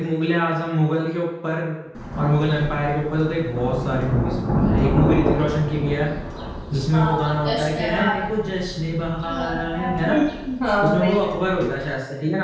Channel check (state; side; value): identical; both; correlation 1.00